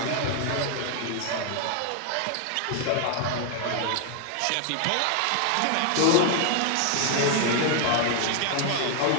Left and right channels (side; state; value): both; different; correlation 0.00